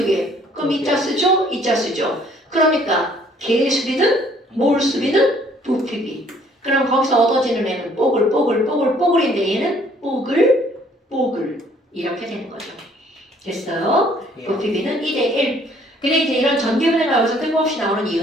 개. 그럼 이자 쓰죠? 이자 쓰죠. 그러니까 개 수비는 몰 수비는 부피비. 그럼 거기서 얻어지는 애는 뽀글인데 얘는 뽀글 이렇게 되는 거죠. 됐어요? 부피비는 2대1. 근데 이제 이런 전기분해가 여기서 뜬금없이 나오는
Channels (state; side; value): normal; both; correlation 0.60